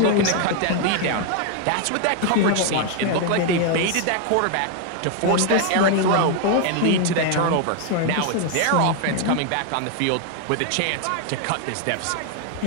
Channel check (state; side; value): different; both; correlation 0.00